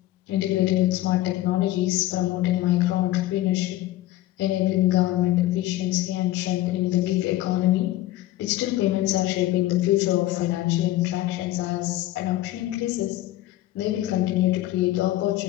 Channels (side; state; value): right; quieter; 15.5 dB